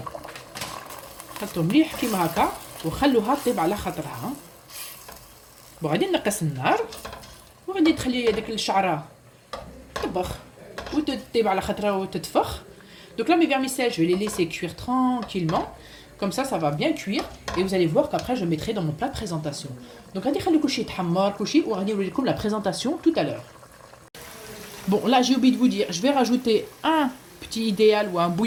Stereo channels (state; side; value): identical; both; correlation 1.00